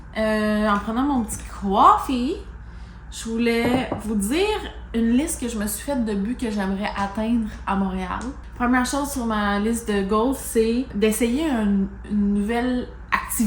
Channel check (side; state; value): both; identical; correlation 1.00